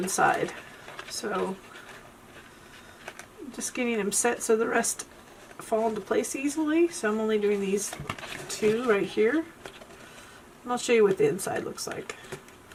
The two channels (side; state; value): both; identical; correlation 1.00